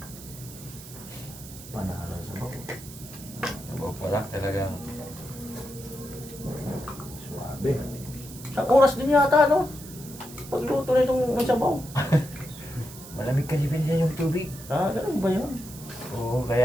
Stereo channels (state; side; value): noise; right; hiss, 16 dB below the sound